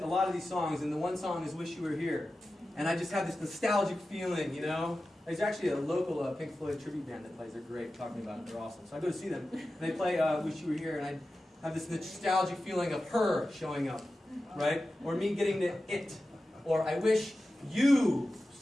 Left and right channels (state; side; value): normal; both; correlation 0.93